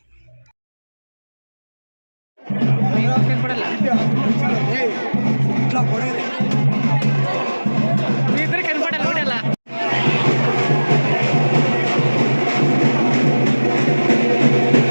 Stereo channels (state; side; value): inverted; both; correlation -1.00